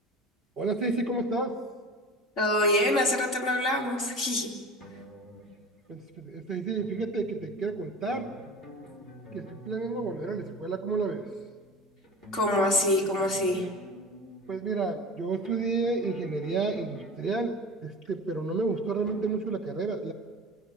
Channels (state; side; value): normal; both; correlation 0.35